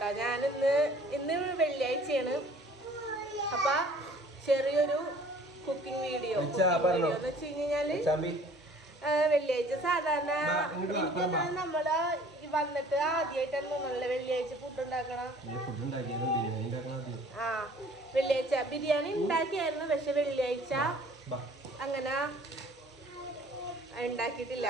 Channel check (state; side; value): normal; both; correlation 0.52